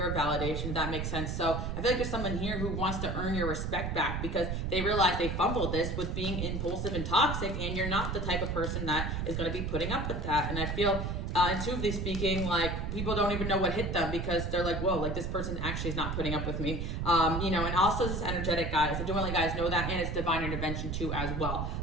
validation, if that makes sense. So I feel like there's someone here who wants to earn your respect back, because they realize they fumbled this with being impulsive and toxic, and you're not the type of person that is going to be putting up with that. And I feel, intuitively speaking, like, people don't even know what hit them, because they're like, whoa, like, this person actually is not putting up with me. And also this energetic, guys. I don't want to let guys know that, and it's divine intervention too as well.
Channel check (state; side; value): noise; right; rumble, 2 dB below the sound